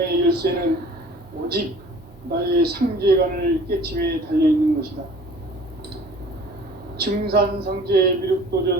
열쇠는 오직 나의 상제관을 깨침에 달려있는 것이다. 증산상제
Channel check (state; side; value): normal; both; correlation 0.48